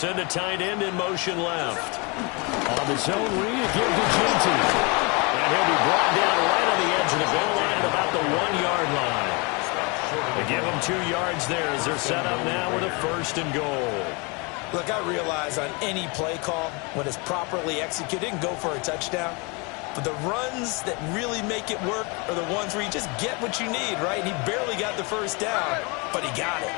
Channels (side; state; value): right; quieter; 29.5 dB